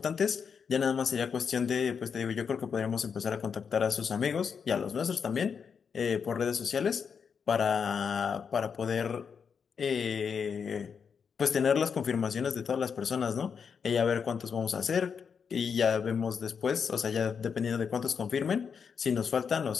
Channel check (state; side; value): quieter; right; 6.5 dB